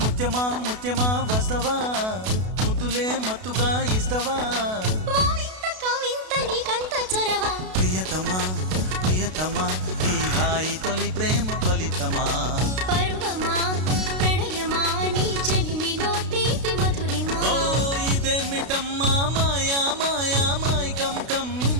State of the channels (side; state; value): left; late; 32 ms